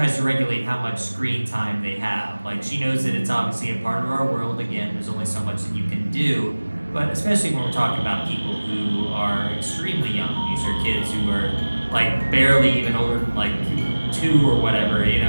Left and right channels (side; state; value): both; inverted; correlation -1.00